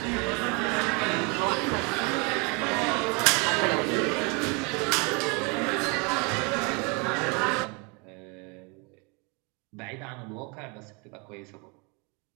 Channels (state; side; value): quieter; left; 31.1 dB